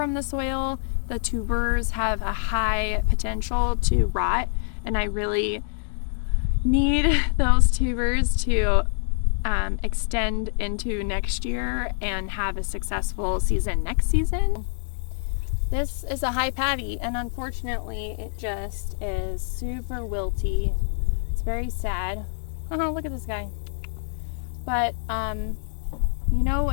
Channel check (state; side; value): silent; right; digital silence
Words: the soil, the tubers have a high potential to rot, and I really need those tubers to extend into next year and have a successful season next season. This is a high patty, and unfortunately it just is super wilty. It's very sad. Oh, look at this guy. But you know,